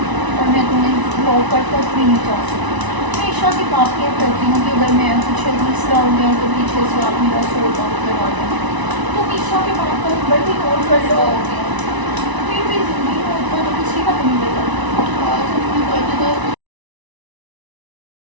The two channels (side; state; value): left; late; 1.0 ms